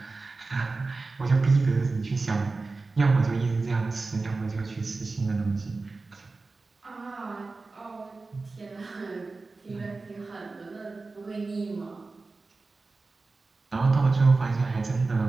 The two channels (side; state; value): left; quieter; 3.7 dB